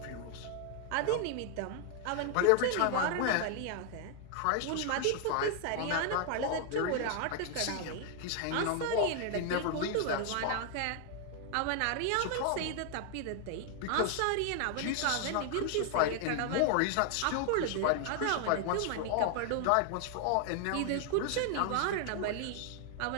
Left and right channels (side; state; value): both; different; correlation 0.00